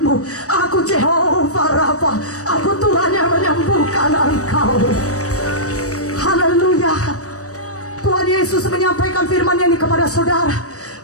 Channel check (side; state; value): right; late; 0.66 ms